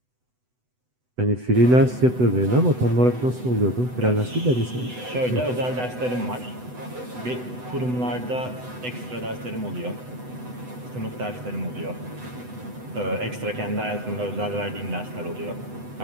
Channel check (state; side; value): late; left; 8.0 ms